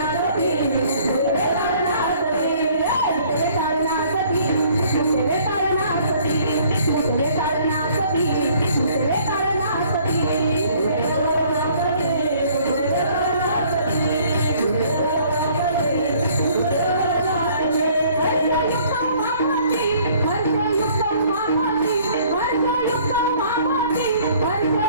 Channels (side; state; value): both; inverted; correlation -0.58